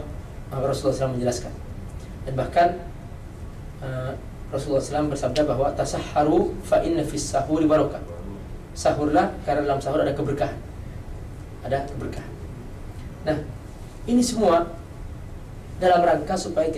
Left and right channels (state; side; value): identical; both; correlation 1.00